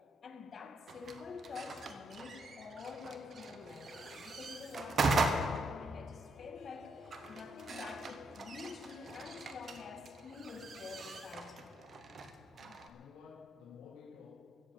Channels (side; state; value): both; normal; correlation 0.77